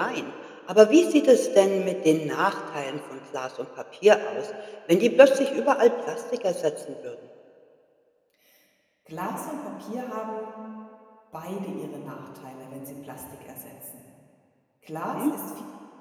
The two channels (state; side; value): identical; both; correlation 1.00